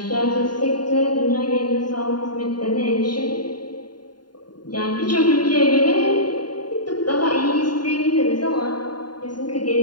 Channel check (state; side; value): late; right; 0.71 ms